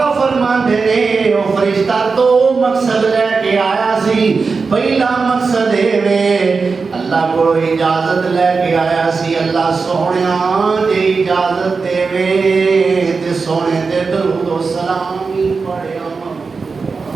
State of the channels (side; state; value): left; quieter; 4.7 dB